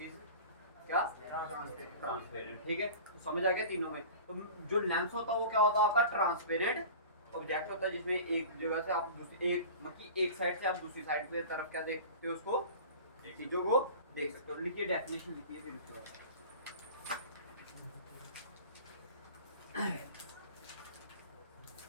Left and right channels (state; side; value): inverted; both; correlation -0.38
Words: इज क्या, ट्रांसपेरेंट, ठीक है। तो समझ आ गया तीनों में। तो जो लेंस होता है वो क्या होता है आपका, ट्रांसपेरेंट ऑब्जेक्ट होता है, जिसमें एक जगह से आप दूसरी, एक मतलब एक साइड से आप दूसरी साइड की तरफ क्या देख सकते हो, उसको चीजों को देख सकते हो। लिखिए डेफिनेशन, लिखिए फिर उसके बाद।